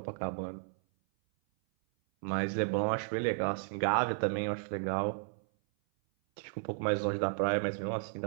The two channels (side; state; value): left; silent; 55 dB below the other